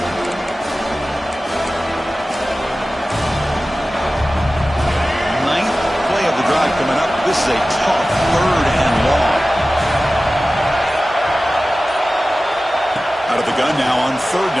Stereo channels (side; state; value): both; normal; correlation 0.96